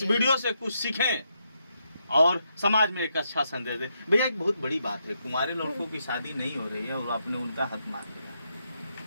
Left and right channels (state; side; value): inverted; both; correlation -0.81